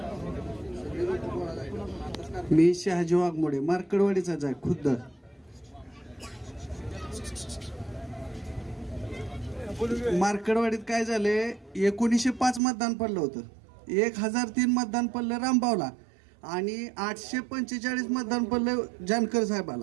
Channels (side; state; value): left; drops out; at 12.6 s